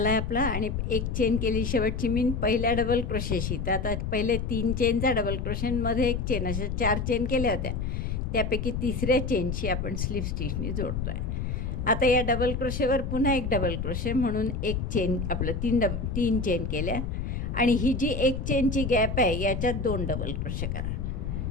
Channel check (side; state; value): left; noise; rumble, 2 dB below the sound